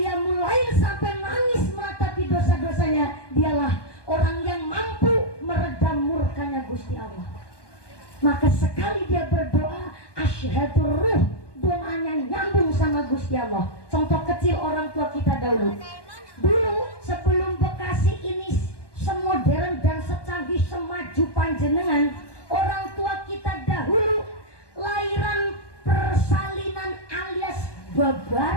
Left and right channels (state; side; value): late; right; 1.2 ms